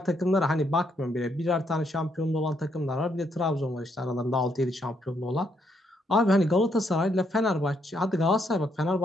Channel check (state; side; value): normal; both; correlation 0.74